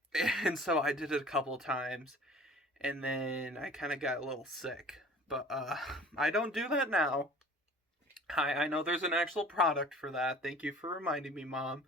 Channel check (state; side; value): normal; both; correlation 0.46